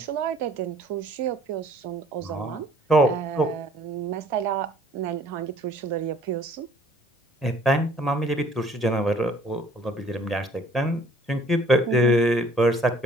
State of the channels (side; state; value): both; normal; correlation 0.56